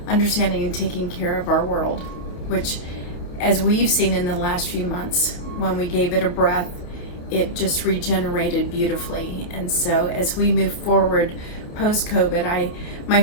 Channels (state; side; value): late; right; 29 ms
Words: understanding and taking care of our world, which, as we've seen in the last few months, when we gave it a breath, it just regenerated beautifully. And so as we move forward post-COVID, my